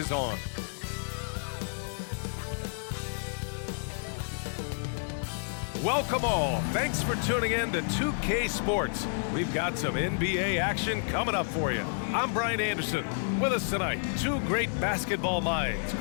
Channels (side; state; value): right; silent; digital silence